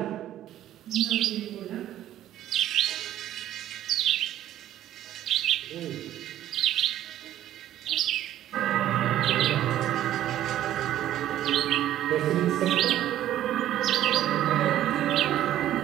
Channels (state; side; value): quieter; left; 12.5 dB